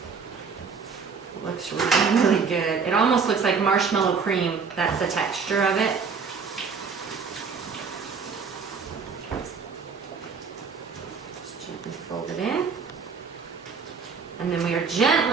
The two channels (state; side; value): quieter; left; 5.5 dB